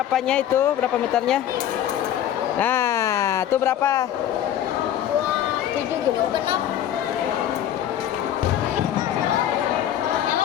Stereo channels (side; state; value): right; quieter; 11.0 dB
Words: itu, berapa meternya. Nah, itu berapa? 7 gitu, genap. Yang